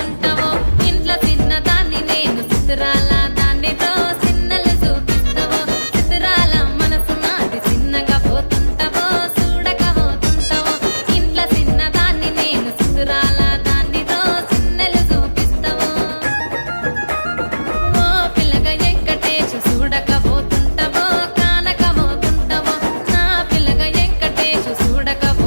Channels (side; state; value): both; inverted; correlation -1.00